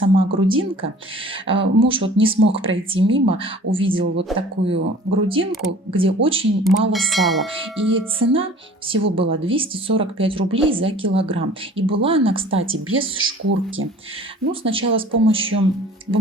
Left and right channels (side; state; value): both; normal; correlation 0.48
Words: грудинка. Муж вот не смог пройти мимо, увидел вот такую грудинку, где очень мало сала. И цена всего была 245 рублей за килограмм. И была она, кстати, без шкурки. Ну, сначала с помощью